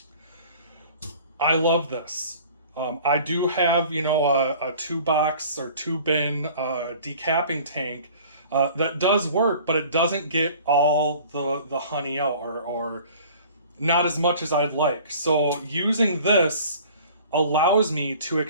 I love this. I do have, you know, a 2-box or 2-bin decapping tank that does work, but it doesn't get all the honey out, or not as much as I'd like. So using this allows me to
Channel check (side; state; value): both; inverted; correlation -0.47